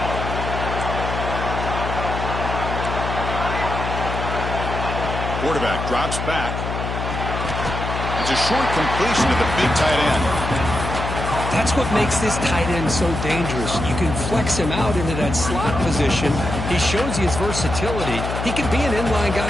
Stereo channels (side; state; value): left; noise; hum, 4 dB below the sound